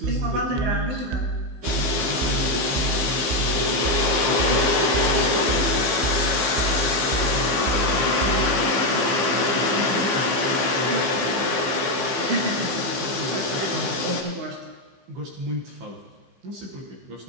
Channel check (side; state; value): left; late; 15 ms